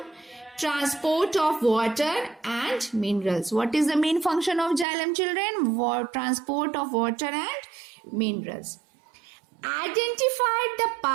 Transport of water and minerals. What is the main function of xylem, children? Transport of water and minerals. Identify the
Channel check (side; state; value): left; drops out; at 4.9 s